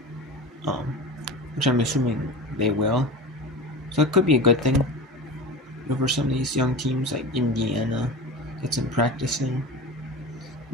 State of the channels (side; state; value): both; normal; correlation 0.30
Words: Which I'm assuming they will. So it could be a good thing for some of these young teams like Indiana, get some practice in.